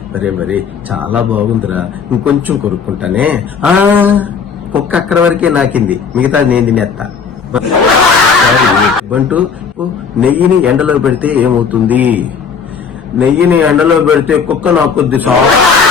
మరి చాలా బాగుందిరా, ఇంకొంచెం కొరుక్కుంటానే. కుక్క అక్కడ వరకే నాకింది, మిగతా నేను తినేస్తా. బంటూ, నెయ్యిని ఎండలో పెడితే ఏమవుతుంది? నెయ్యిని ఎండలో పెడితే కుక్క నాకొద్ది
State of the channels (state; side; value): quieter; right; 6.0 dB